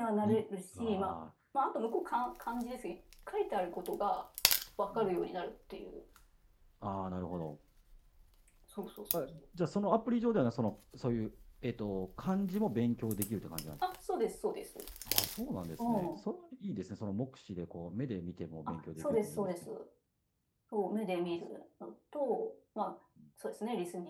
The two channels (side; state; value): both; identical; correlation 1.00